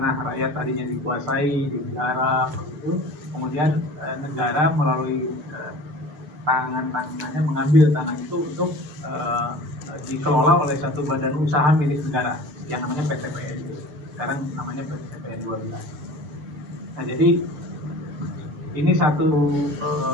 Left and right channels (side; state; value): left; late; 6.7 ms